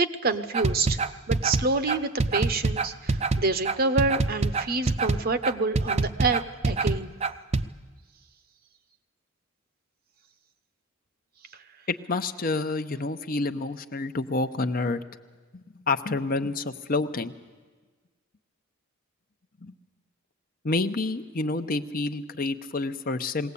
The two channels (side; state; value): both; normal; correlation 0.29